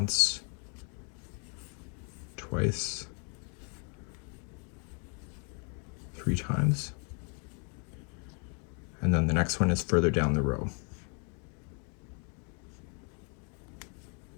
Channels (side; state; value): right; quieter; 38.7 dB